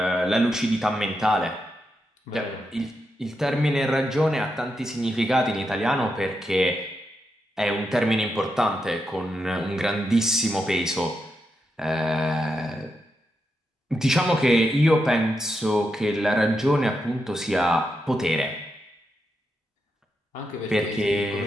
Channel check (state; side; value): normal; both; correlation 0.85